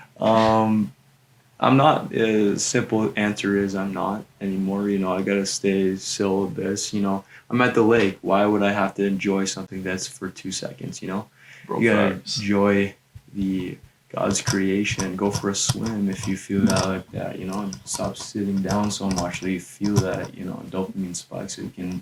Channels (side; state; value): both; identical; correlation 1.00